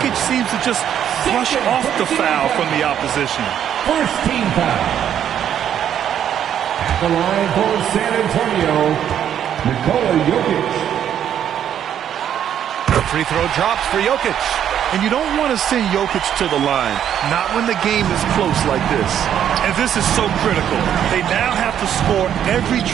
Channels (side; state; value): left; quieter; 9.7 dB